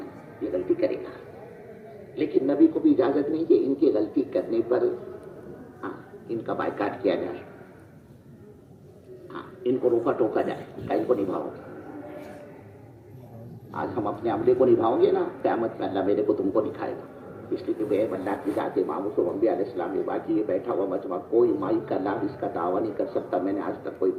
یہ غلطی کرے گا, لیکن نبی کو بھی اجازت نہیں کہ ان کی غلطی کرنے پر ان کا بائیکاٹ کیا جائے, ان کو روکا ٹوکا جائے کہ ان کو نبھاؤ. آج ہم اپنے عملے کو نبھاؤں گے نا قیامت میں اللہ میرے کو تم کو دکھائے گا. اس لیے کہ بے اللہ کی ذات امام انبیاء علیہ السلام نے باقی یہ بیٹھا ہوا مجمع کوئی مائی کا لابھ اس کا دعویٰ نہیں کر سکتا میں نے آج تک کوئی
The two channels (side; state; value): both; identical; correlation 1.00